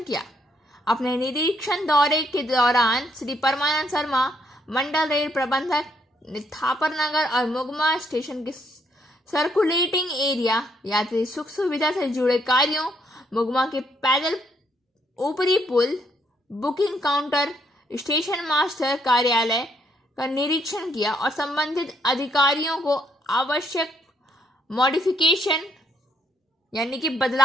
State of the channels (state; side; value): normal; both; correlation 0.72